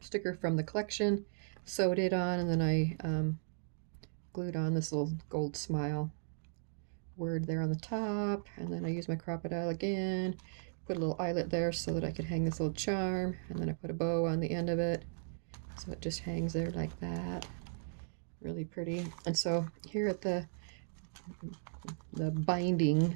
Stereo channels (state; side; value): silent; left; digital silence